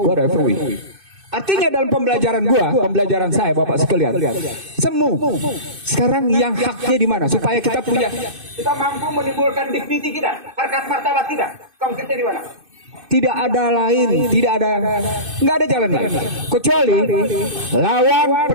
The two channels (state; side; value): late; left; 2.6 ms